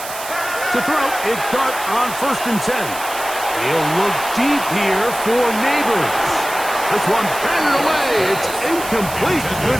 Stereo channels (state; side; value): noise; right; hiss, 10 dB below the sound